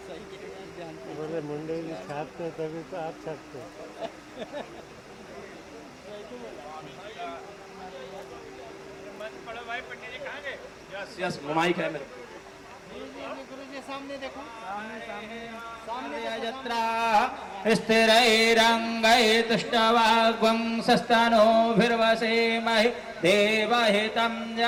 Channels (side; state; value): both; identical; correlation 1.00